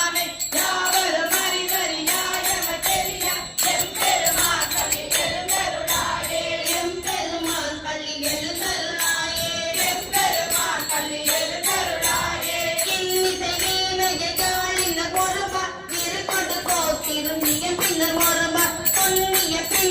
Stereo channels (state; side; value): identical; both; correlation 1.00